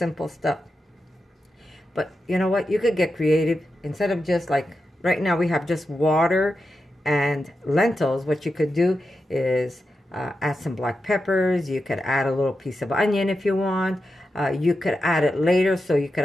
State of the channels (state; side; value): normal; both; correlation 0.89